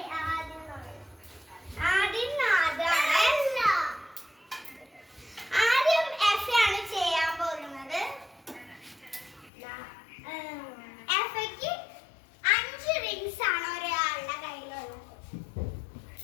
എഫ് ആണ് ചെയ്യാൻ പോകുന്നത്. എഫയ്ക്ക് 5 റിങ്സ് ആണ് ഒരാളുടെ കയ്യിലുള്ളത്.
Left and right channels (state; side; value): drops out; right; at 9.5 s